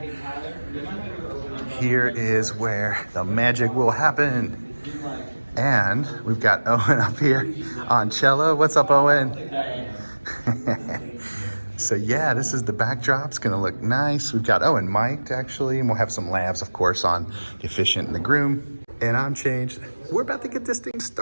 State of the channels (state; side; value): inverted; both; correlation -1.00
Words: Here is where the magic will happen. And we've got Owen up here on cello. What's up, Owen? So yeah, this is the backdrop. It's gonna look nice. We've got, oh, and mic'd actually, and we'll have some labs, of course, on the Efficient and the Groom. And I'm changed. We're about to get this thing